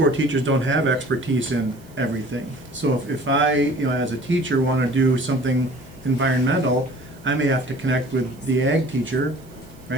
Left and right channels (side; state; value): right; noise; hiss, 28 dB below the sound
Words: teachers don't have expertise in everything. So if I, as a teacher, want to do something environmental, I may have to connect with the ag teacher,